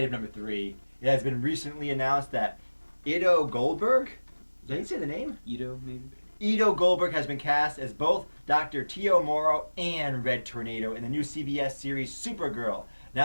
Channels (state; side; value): inverted; both; correlation -1.00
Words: number 3. It has been recently announced that Ido Goldberg, did I say the name? Ito, maybe? Ito Goldberg has been cast as both Dr. Tio Morrow and Red Tornado in the new CBS series Supergirl.